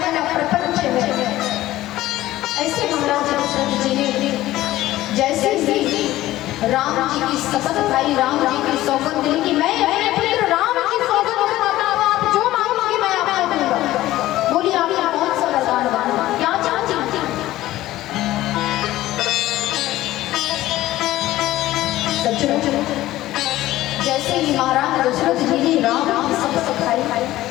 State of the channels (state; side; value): quieter; right; 15.6 dB